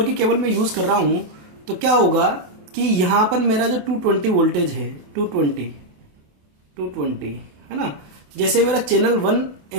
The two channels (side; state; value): left; late; 28 ms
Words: की केबल में यूज कर रहा हूं तो क्या होगा कि यहां पर मेरा जो 220 वोल्टेज है, 220 है ना, जैसे मेरा चैनल